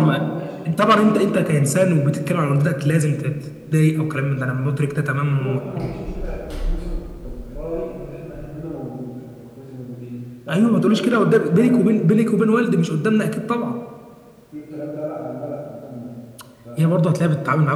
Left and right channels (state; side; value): identical; both; correlation 1.00